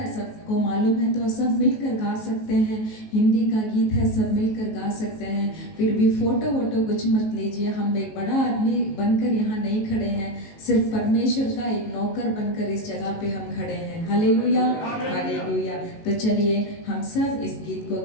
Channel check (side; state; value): right; late; 19 ms